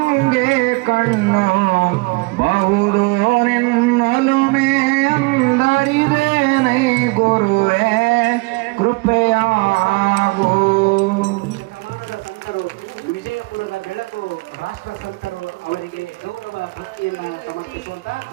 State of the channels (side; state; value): left; quieter; 27.3 dB